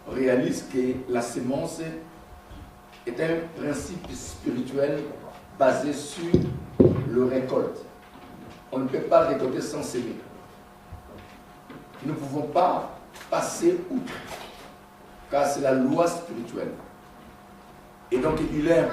réalise que la semence est un principe spirituel basé sur le récolte. On ne peut pas récolter sans semer. Nous ne pouvons pas passer outre, car c'est la loi spirituelle. Et donc il est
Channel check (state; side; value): identical; both; correlation 1.00